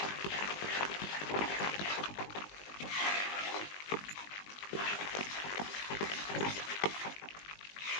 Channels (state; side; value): late; right; 20 ms